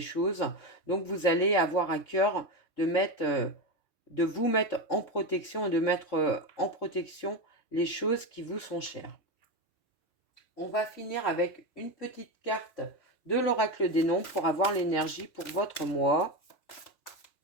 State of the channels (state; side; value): late; right; 3.4 ms